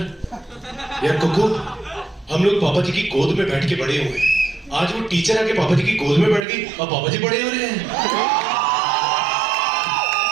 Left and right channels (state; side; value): drops out; left; at 6.4 s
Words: यार. कुकू, हम लोग पापा जी की गोद में बैठ के बड़े हुए, आज वो टीचर आके पापा जी की गोद में बैठ गई और पापा जी बड़े हो रहे हैं.